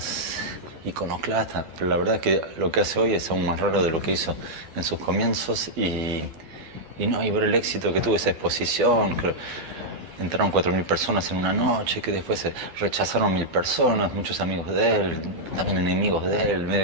iconoclasta, pero la verdad es que lo que hace hoy es aún más raro de lo que hizo en sus comienzos y ver el éxito que tuvo esa exposición, que entraron 4.000 personas en una noche, que después se rechazaron 1.000 personas, muchos amigos de él, también enemigos de él,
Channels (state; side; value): late; left; 12 ms